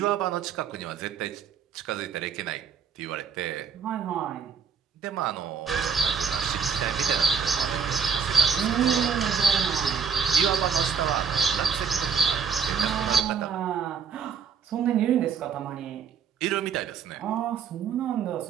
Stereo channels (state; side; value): quieter; left; 6.7 dB